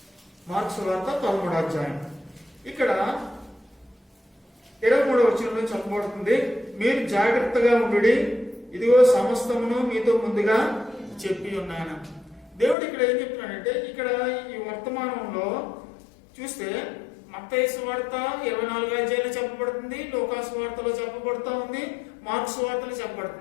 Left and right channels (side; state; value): right; drops out; at 12.8 s